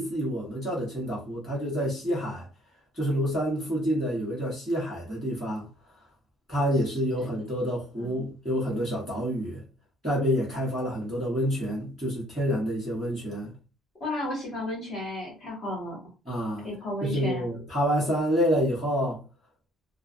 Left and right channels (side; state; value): both; normal; correlation 0.60